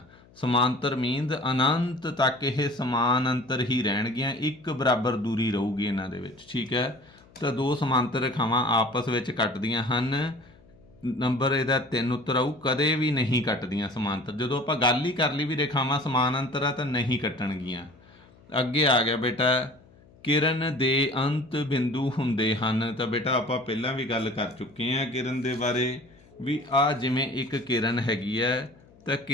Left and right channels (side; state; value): left; noise; hum, 27 dB below the sound